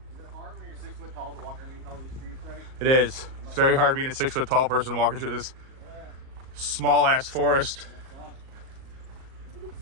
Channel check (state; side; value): late; left; 38 ms